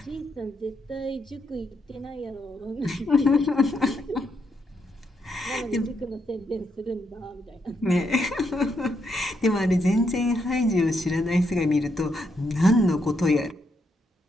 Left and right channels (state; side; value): normal; both; correlation 0.79